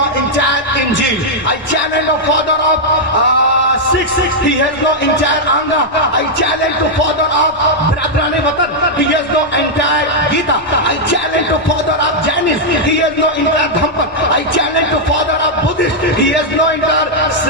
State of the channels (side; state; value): both; normal; correlation -0.04